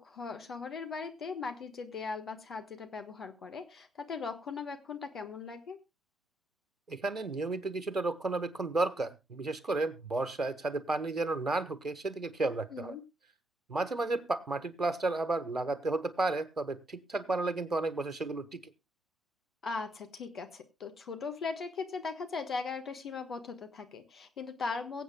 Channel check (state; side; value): normal; both; correlation 0.75